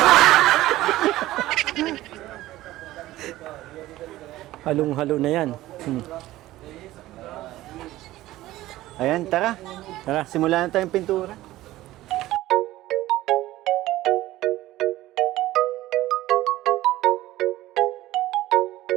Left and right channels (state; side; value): quieter; left; 16.1 dB